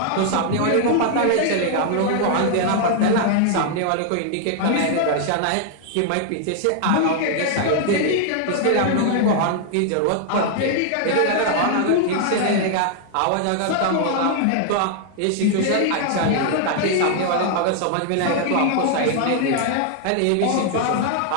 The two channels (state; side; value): different; both; correlation 0.00